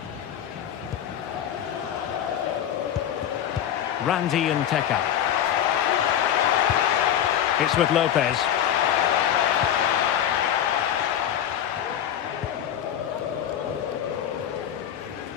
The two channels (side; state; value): right; quieter; 10.1 dB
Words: Randy and Teka. It's with Lopez.